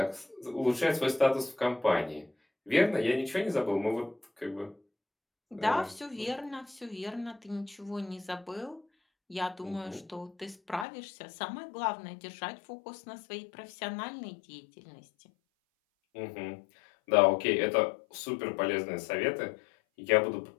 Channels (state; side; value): drops out; right; at 10.9 s